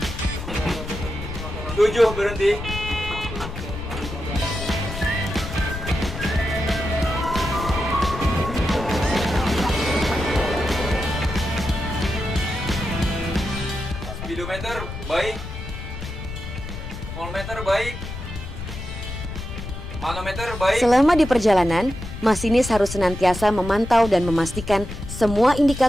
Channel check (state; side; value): noise; left; rumble, 8 dB below the sound